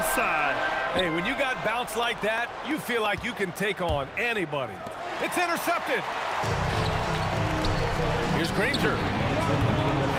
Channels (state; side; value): identical; both; correlation 1.00